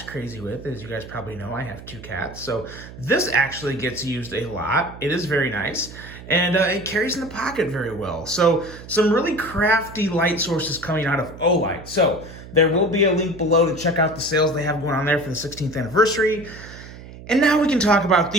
crazy with. As you guys probably know, I have two cats. So this actually gets used a lot. It is very nice. And it carries in the pocket very well. So some really crafty light sources coming out of O-Lite. So there will be a link below to check out the sales they have going on there for the 16th anniversary. And now we can talk about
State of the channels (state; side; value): noise; right; hum, 16 dB below the sound